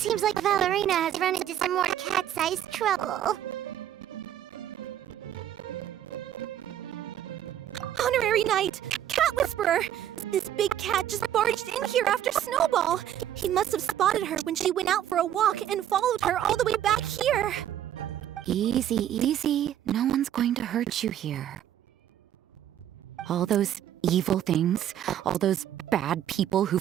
like Valerina has run into some more cat-sized trouble. Honorary Knight! Cat Whisperer! This big cat just barged in here after Snowball. He must have spotted her when she went out for a walk and followed her all the way back here. Easy, easy. No one's going to hurt you here. All those evil things, all those bad people who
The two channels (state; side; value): quieter; left; 11.0 dB